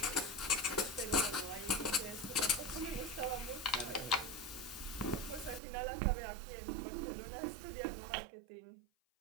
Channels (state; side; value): drops out; left; at 5.6 s